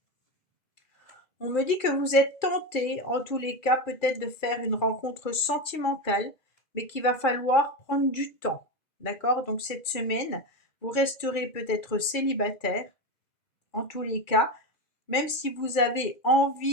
On me dit que vous êtes tenté, en tous les cas, peut-être de faire une rencontre sentimentale, mais qu'il va falloir prendre du temps. D'accord? Donc cette semaine, vous resterez peut-être célibataire, en tous les cas, même si vous avez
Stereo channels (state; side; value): late; right; 2.4 ms